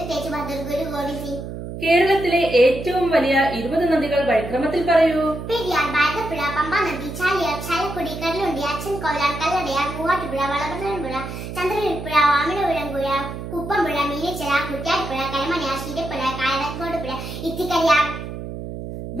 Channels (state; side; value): noise; right; hum, 8 dB below the sound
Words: തേജ് ബഹദൂർ, ഗുരു ഗോവിന്ദ് സിംഗ്. കേരളത്തിലെ ഏറ്റവും വലിയ 20 നദികൾ വഴിക്രമത്തിൽ പറയൂ. പെരിയാർ, ഭാരതപ്പുഴ, പമ്പ നദി, ചാലിയാർ, ചാലക്കുടി, കല്ലുണ്ടി, അച്ഛൻ കോലാർ, കല്ലടയാർ, മൂവാറ്റുപുഴ, വളപട്ടണപ്പുഴ, ചന്ദ്രനിൽപ്പുഴ, വാമനപുരം പുഴ, കുപ്പംപുഴ, മീനച്ചിറ, കുറ്റ്യാടിപ്പുഴ, കരമനയാർ, ശീലപ്പുഴ, കായക്കോട് പുഴ, ഇത്തിക്കരിയാർ.